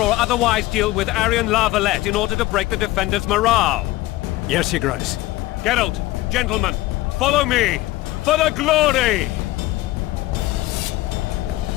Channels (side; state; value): right; quieter; 17.9 dB